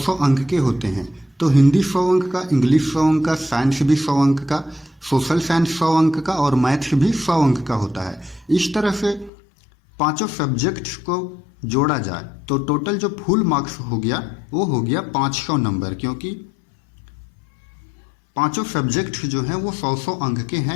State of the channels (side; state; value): right; drops out; at 9.3 s